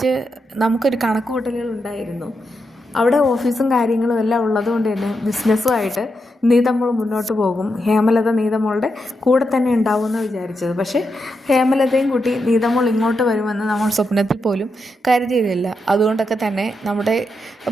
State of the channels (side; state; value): both; normal; correlation 0.85